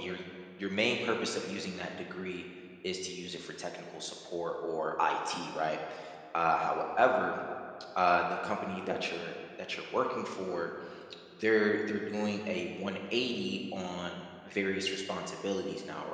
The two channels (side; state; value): both; identical; correlation 1.00